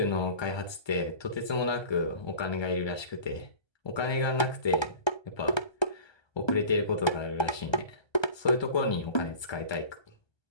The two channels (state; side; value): late; right; 1.3 ms